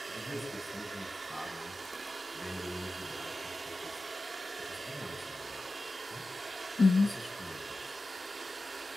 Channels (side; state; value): both; normal; correlation 0.94